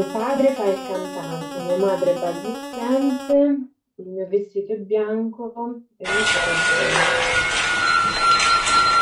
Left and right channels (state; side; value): identical; both; correlation 1.00